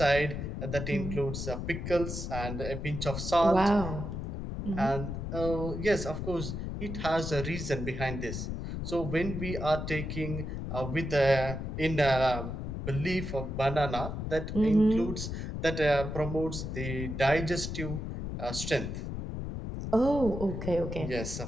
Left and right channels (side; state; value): left; noise; rumble, 5 dB below the sound